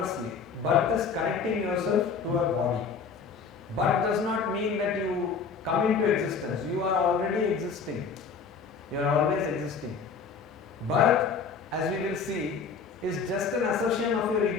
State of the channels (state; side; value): quieter; right; 5.4 dB